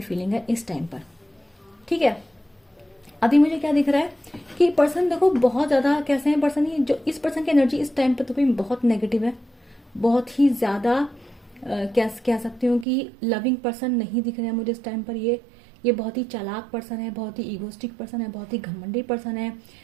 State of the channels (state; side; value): drops out; left; at 12.9 s